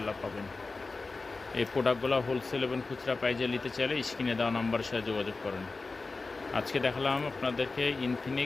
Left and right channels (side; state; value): right; quieter; 3.8 dB